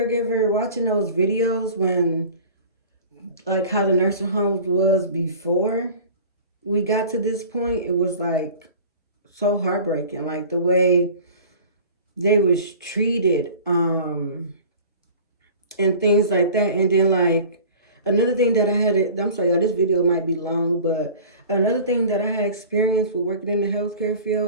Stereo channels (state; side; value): inverted; both; correlation -0.41